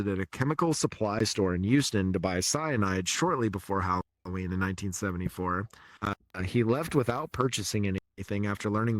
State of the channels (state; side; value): identical; both; correlation 1.00